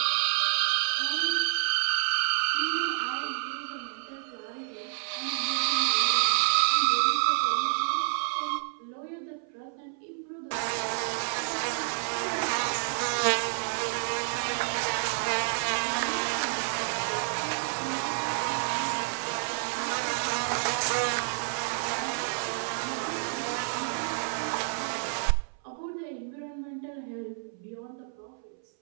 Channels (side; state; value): left; silent; 58 dB below the other